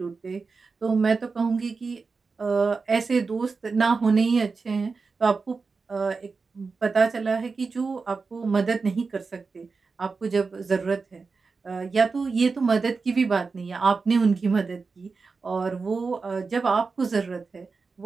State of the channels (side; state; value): left; quieter; 4.5 dB